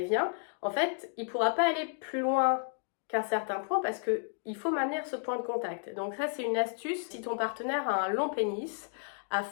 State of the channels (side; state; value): right; silent; 56 dB below the other